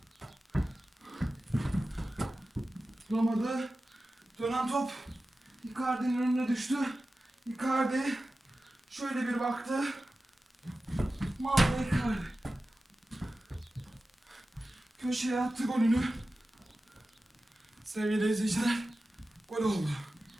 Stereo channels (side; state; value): both; normal; correlation 0.94